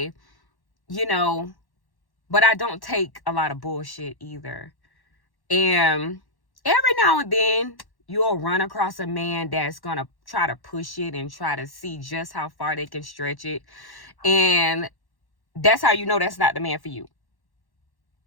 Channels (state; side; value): late; right; 1.1 ms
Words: I don't take a lot of bullshit either. And every now and then you'll run across a man that's going to try to push it and try to see just how far they can stretch it. And that's how you know that's not the man for you.